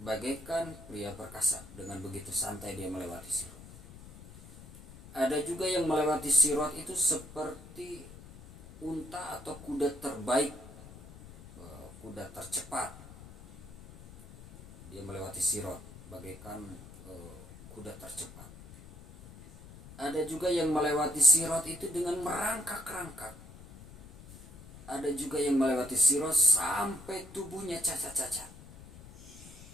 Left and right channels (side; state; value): left; noise; rumble, 17 dB below the sound